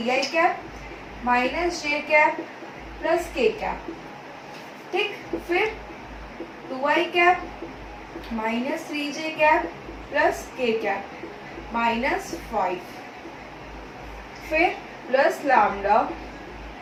cap minus j cap plus k cap. ठीक, फिर 2i cap minus 3j cap plus k cap -5, फिर प्लस लैम्डा,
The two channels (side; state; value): both; identical; correlation 1.00